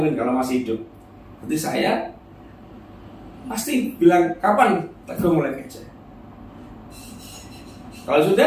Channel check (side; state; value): both; identical; correlation 1.00